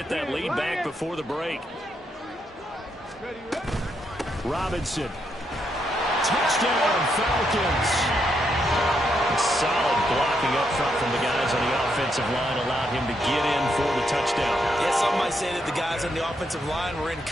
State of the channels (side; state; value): both; normal; correlation 0.79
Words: that lead back before the break. Robinson. Touchdown, Falcons. Solid blocking up front from the guys on the offensive line allowed him to get in for the touchdown. Yeah, some might say that the guys on the offensive line were in